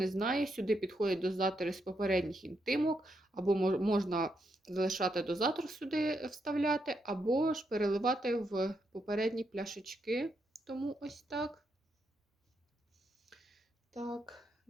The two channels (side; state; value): both; normal; correlation 0.81